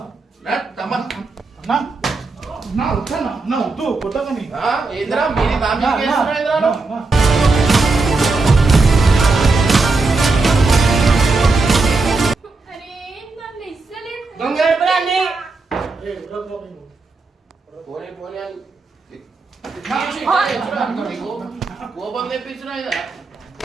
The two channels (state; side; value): quieter; left; 3.6 dB